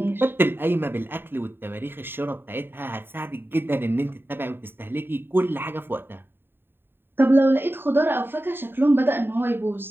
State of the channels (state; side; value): late; left; 0.10 ms